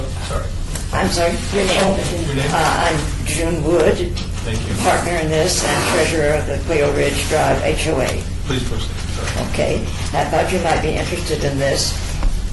Sorry. I'm sorry, your name? Your name? I'm June Wood, Thank you. partner in this and treasurer of the Cleo Ridge Drive HOA. Please proceed. Sorry. Okay, I thought you might be interested in this.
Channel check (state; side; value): identical; both; correlation 1.00